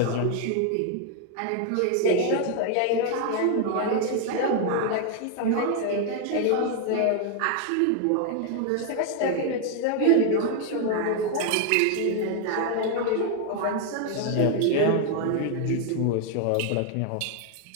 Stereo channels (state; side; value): different; both; correlation 0.00